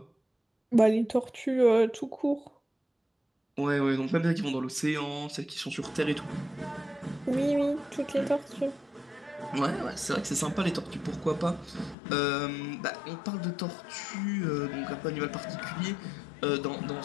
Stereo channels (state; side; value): drops out; right; at 12.0 s